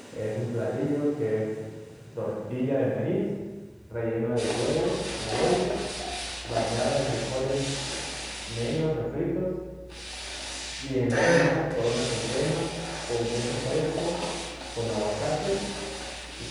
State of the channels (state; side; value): identical; both; correlation 1.00